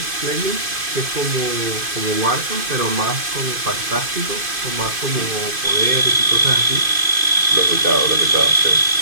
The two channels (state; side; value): late; left; 2.5 ms